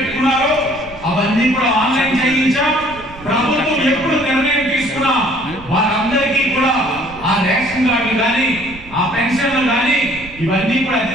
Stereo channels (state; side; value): noise; right; rumble, 18 dB below the sound